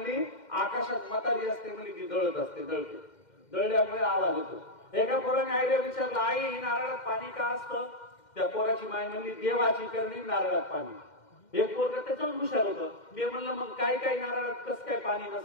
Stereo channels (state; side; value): late; right; 2.1 ms